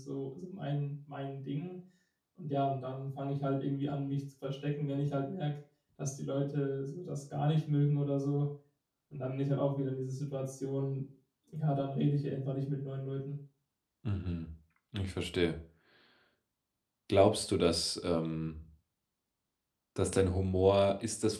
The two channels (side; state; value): both; identical; correlation 1.00